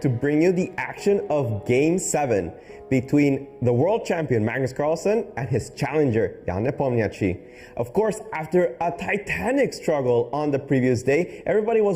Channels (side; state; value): both; identical; correlation 1.00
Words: bring you the action of Game 7 between the world champion Magnus Carlsen and his challenger Carlsen-Nepomniachtchi. Of course, after a titanic struggle on the previous day, everybody